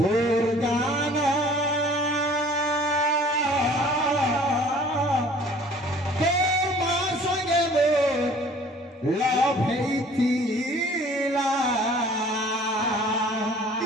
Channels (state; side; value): normal; both; correlation 0.51